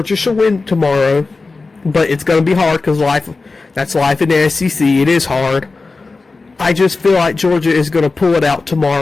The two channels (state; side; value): quieter; right; 3.8 dB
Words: should win tomorrow, but it's going to be hard because that's life in the SEC. It is hard. I just feel like Georgia is going to pull it out